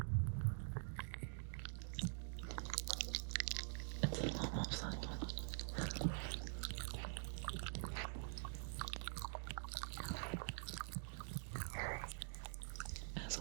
it's a lot more subtle.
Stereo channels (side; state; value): left; silent; digital silence